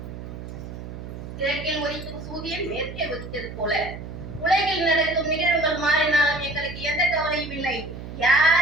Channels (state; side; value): noise; right; hum, 10 dB below the sound